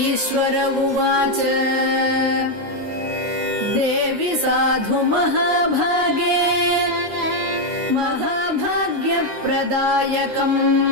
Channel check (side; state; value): left; late; 9.7 ms